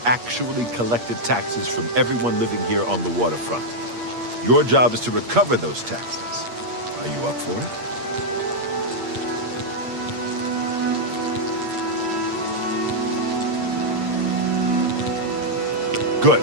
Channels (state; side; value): late; left; 8.5 ms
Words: actually collected taxes from everyone living here on the waterfront. Your job is to recover those taxes. Are you up for it? Good.